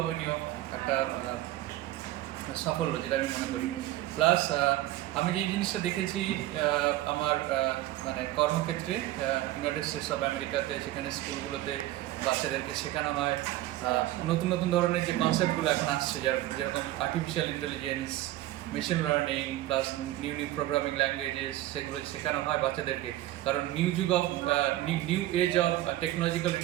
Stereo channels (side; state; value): left; quieter; 15.3 dB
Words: একটা সাফল্য, যেটা আমি মনে করি। প্লাস আমি যে জিনিসটা দেখেছি আমার কর্মক্ষেত্রে ইউনাইটেড স্টেটস অফ আমেরিকাতে, সেখানে স্কুলগুলোতে বাচ্চাদেরকে শেখানো হয় নতুন নতুন ধরনের যে কনসেপ্টগুলো এখন আসছে, যেরকম artificial intelligence, machine learning plus new programming languages, সেগুলো শেখানো হয় বাচ্চাদেরকে। কারণ নিউ এজ অফ টেকনোলজিক্যাল